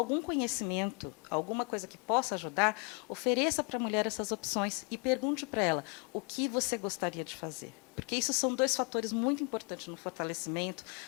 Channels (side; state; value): right; quieter; 34.7 dB